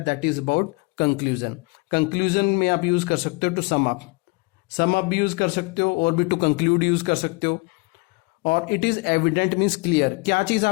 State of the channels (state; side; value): quieter; right; 27.8 dB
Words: that is about conclusion. Conclusion में आप यूज कर सकते हो टू सम अप भी यूज कर सकते हो, और भी टू कंक्लूड यूज कर सकते हो। और it is evident means clear, क्या चीज